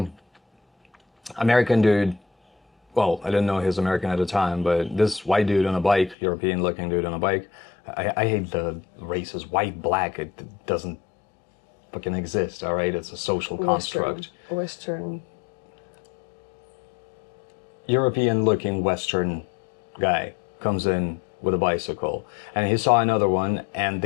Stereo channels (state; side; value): drops out; right; at 6.2 s